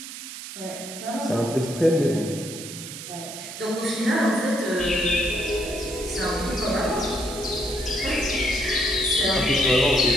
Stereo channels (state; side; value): noise; right; hiss, 11 dB below the sound